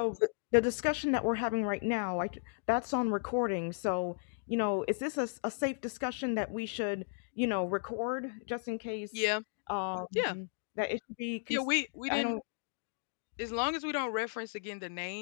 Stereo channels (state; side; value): silent; right; digital silence